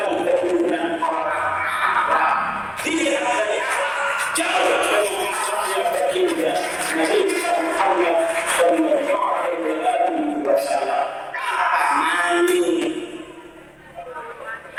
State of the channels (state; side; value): identical; both; correlation 1.00